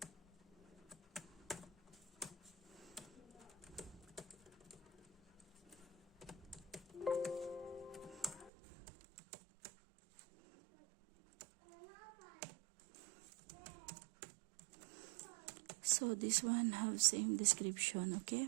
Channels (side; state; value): left; drops out; at 8.5 s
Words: So this one have same description,